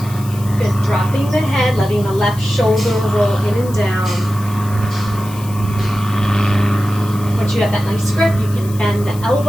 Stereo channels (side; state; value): left; noise; hiss, 18 dB below the sound